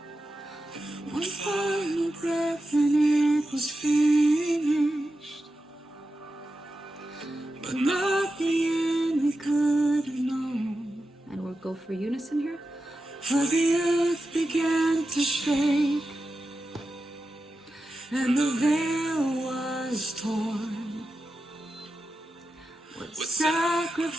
One final breath and it was finished, but not the end we could have known. And we'll go for unison here. For the earth began to shake, and the veil was torn. What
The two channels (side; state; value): both; normal; correlation 0.91